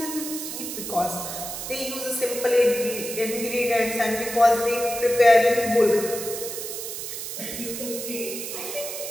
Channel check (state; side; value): noise; right; hiss, 7 dB below the sound